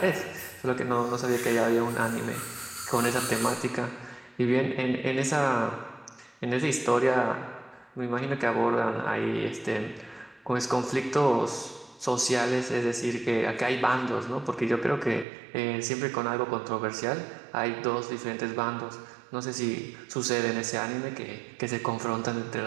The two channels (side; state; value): left; drops out; at 15.2 s